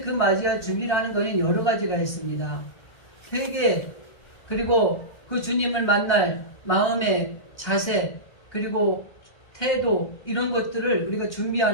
맞이할 준비를 하는 거는 여러 가지가 있습니다. 회개, 그리고 그 주님을 만날 마음의 자세, 그리고 태도, 이런 것들을 우리가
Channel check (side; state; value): right; late; 1.3 ms